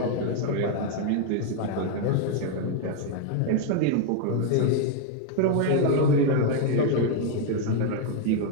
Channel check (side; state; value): both; different; correlation 0.01